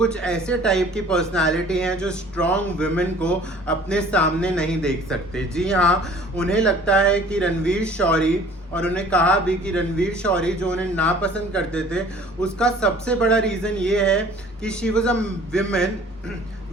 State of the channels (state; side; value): normal; both; correlation 0.50